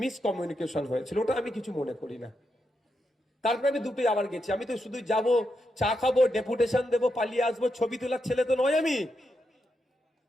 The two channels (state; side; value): normal; both; correlation 0.84